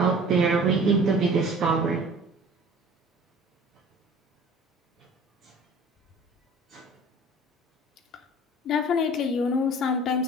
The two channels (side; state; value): both; normal; correlation 0.45